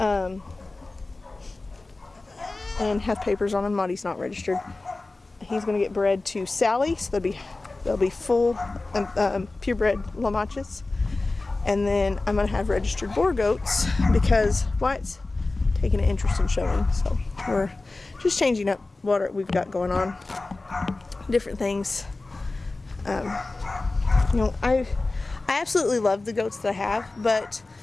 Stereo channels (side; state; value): right; quieter; 3.3 dB